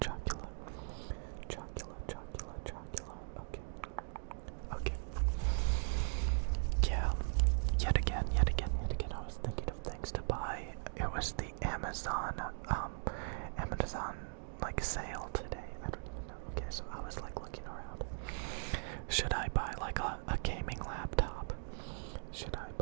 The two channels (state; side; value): silent; left; digital silence